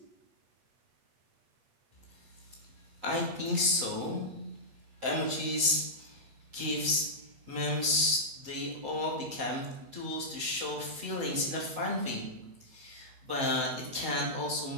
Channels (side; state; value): left; late; 7.8 ms